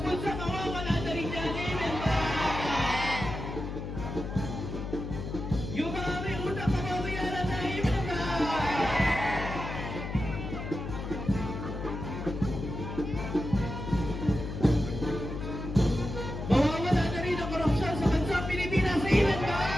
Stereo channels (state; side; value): noise; left; hum, 6 dB below the sound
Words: bulsa, mawawala na rin yan. Amen ba? Yung mga may utang, mababayaran na. Amen ba? Mawawala na rin ang korupsyon sa bansang Pilipinas. Amen ba?